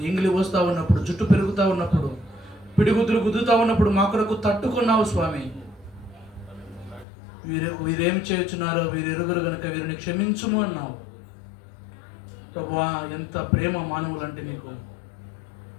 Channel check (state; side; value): drops out; right; at 7.1 s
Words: ఇంగిలి పోస్తూ ఉన్నప్పుడు, జుట్టు పెరుగుతూ ఉన్నప్పుడు, పిడిగుద్దులు గుద్దుతూ ఉన్నప్పుడు మా కొరకు తట్టుకున్నావు స్వామి. వీరేమి చేయుచున్నారో వీరు ఎరుగురు గనుక వీరిని క్షమించుము అన్నావు. ప్రభువా, ఎంత ప్రేమ మానవులంటే నీకు.